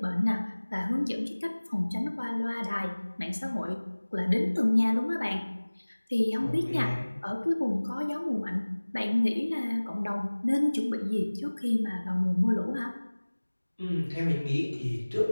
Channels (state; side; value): inverted; both; correlation -1.00